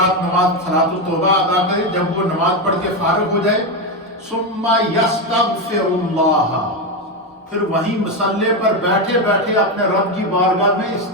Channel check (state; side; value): normal; both; correlation 0.10